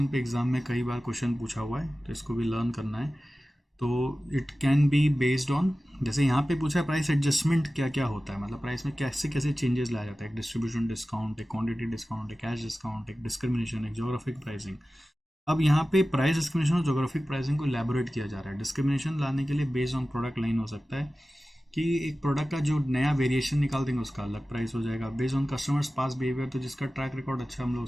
पे एग्जाम में कई बार क्वेश्चन पूछा हुआ है, तो इसको भी लर्न करना है। तो it can be based on, जैसे यहाँ पे पूछा है प्राइस एडजस्टमेंट क्या क्या होता है, मतलब प्राइस में कैसे कैसे चेंजेस लाया जाता है। एक डिस्ट्रीब्यूशन डिस्काउंट, एक क्वांटिटी डिस्काउंट, एक कैश डिस्काउंट, एक डिस्क्रिमिनेशन, एक जोग्राफिक प्राइसिंग। अब यहाँ पे प्राइस डिस्क्रिमिनेशन और जोग्राफिक प्राइसिंग को इलेबोरेट किया जा रहा है। डिस्क्रिमिनेशन लाने के लिए बेस्ड ऑन प्रोडक्ट लाइन हो सकता है कि एक प्रोडक्ट का जो नया वेरिएशन निकाल देंगे उसका अलग प्राइस हो जाएगा। Based on customers pass behaviour, तो जिसका ट्रैक रिकॉर्ड अच्छा हम लोग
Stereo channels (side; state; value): both; normal; correlation 0.95